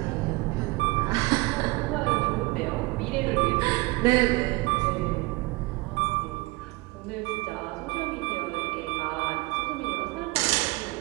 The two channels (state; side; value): quieter; left; 23.3 dB